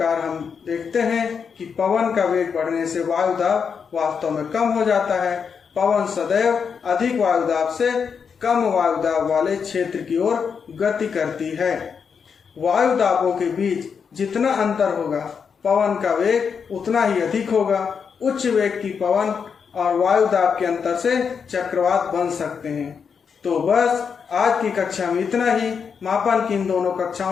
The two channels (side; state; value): right; quieter; 6.4 dB